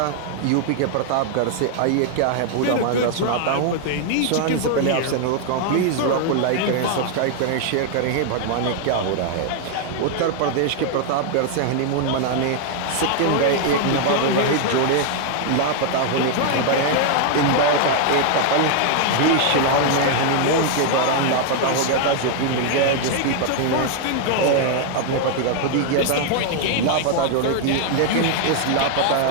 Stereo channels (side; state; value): both; different; correlation 0.00